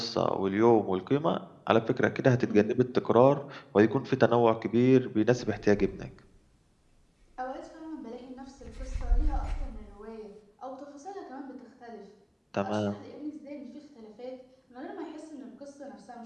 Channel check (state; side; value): identical; both; correlation 1.00